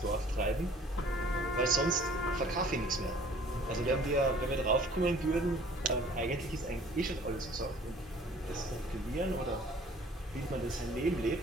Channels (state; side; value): normal; both; correlation 0.52